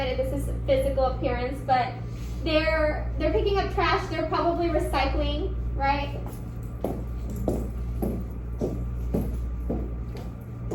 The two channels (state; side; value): identical; both; correlation 1.00